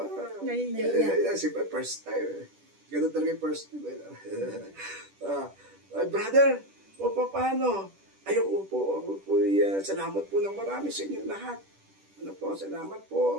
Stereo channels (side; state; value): left; late; 10 ms